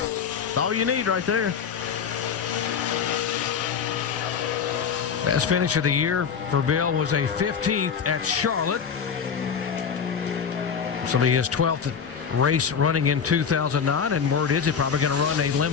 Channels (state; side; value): quieter; right; 6.8 dB